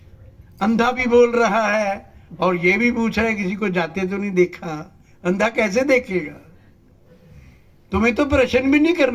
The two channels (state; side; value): identical; both; correlation 1.00